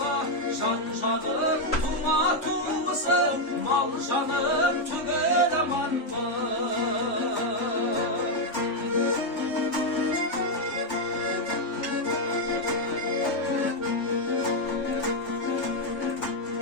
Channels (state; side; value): late; right; 3.4 ms